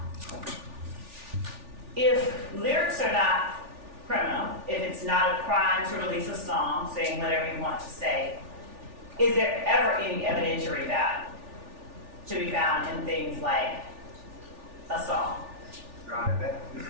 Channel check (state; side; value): late; left; 3.4 ms